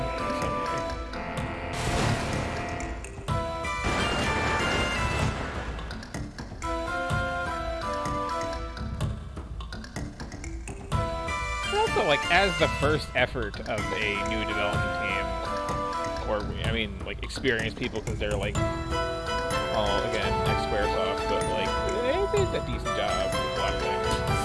in some way. Also, like, as the first effort of a new development team, or, I mean, like, experienced people, because they're, like, all, again, ex-Squaresoft, but, like, they did a decent job with a lot of things.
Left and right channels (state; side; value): identical; both; correlation 1.00